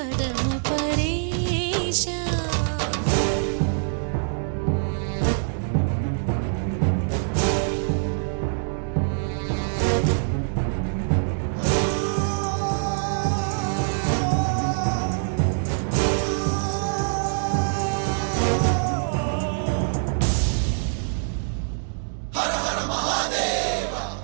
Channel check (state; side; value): silent; left; digital silence